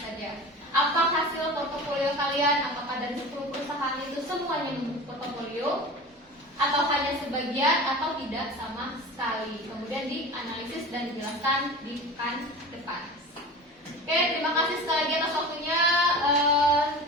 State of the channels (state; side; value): normal; both; correlation 0.35